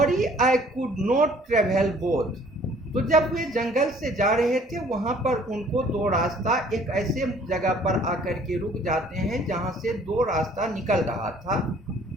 I could not travel both. तो जब वे जंगल से जा रहे थे वहां पर उनको दो रास्ता एक ऐसे जगह पर आकर के रुक जाते हैं जहां से दो रास्ता निकल रहा था।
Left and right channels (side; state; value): both; normal; correlation 0.56